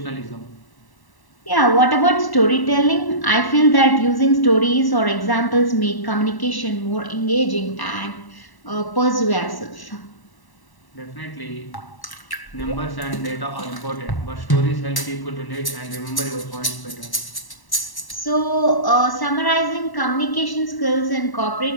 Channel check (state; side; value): late; right; 1.1 ms